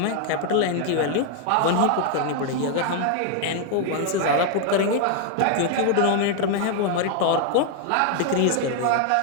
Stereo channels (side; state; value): both; different; correlation 0.00